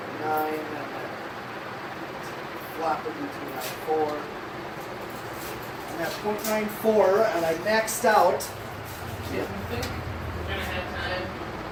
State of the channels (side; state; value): both; identical; correlation 1.00